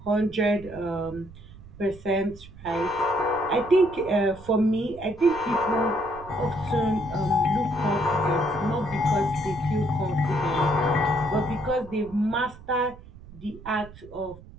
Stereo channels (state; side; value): noise; right; rumble, 18 dB below the sound